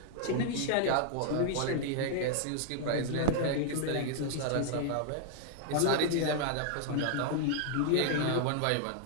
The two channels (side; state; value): both; different; correlation -0.01